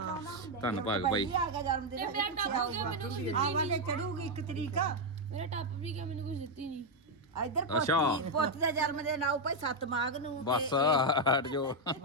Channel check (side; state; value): both; normal; correlation 0.02